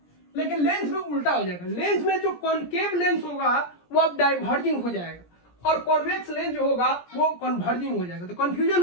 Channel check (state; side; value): late; right; 17 ms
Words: लेकिन लेंस में उल्टा हो जाएगा, लेंस में जो कॉनकेव लेंस होगा वो अब डाइवर्जिंग हो जाएगा और कॉन्वेक्स लेंस जो होगा वो कन्वर्जिंग हो जाएगा। तो कंफ्यूजन